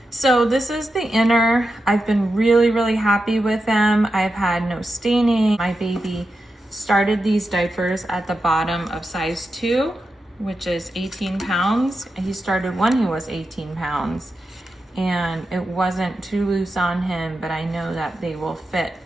So this is the inner. I've been really happy with them. I've had no staining. My baby started these diapers at the bottom of size 2, which is 18 pounds. He started when he was 18 pounds. And it wasn't too loose on him, but I know that they will fit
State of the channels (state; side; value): normal; both; correlation 0.89